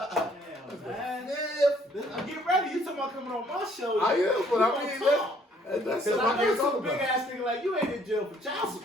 man. Get ready. You talking about coming on my show. I am, but I mean, That's Because something I I know can't talk some big about. ass nigga like, you ain't in jail for child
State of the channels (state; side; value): normal; both; correlation 0.63